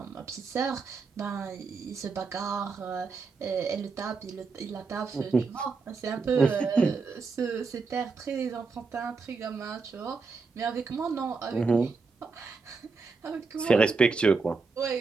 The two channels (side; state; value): left; quieter; 4.5 dB